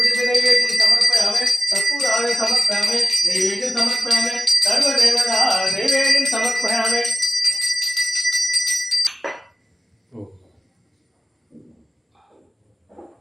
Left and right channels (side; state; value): both; normal; correlation 0.96